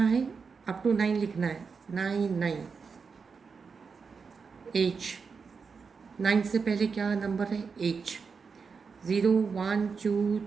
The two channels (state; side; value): quieter; left; 5.4 dB